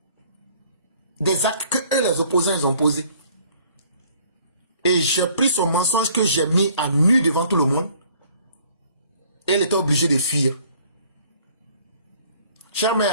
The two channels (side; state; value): both; inverted; correlation -0.57